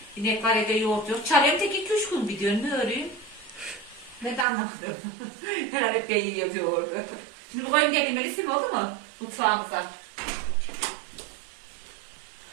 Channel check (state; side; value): drops out; left; at 4.5 s